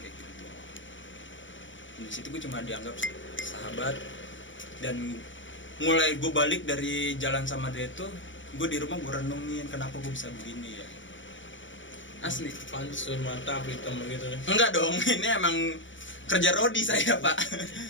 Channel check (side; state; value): right; late; 0.56 ms